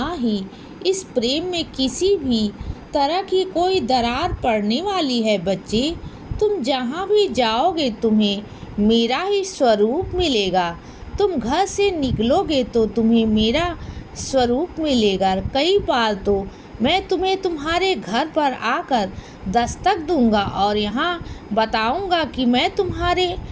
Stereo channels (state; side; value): identical; both; correlation 1.00